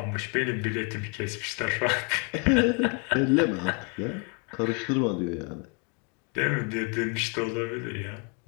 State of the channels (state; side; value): quieter; right; 34.4 dB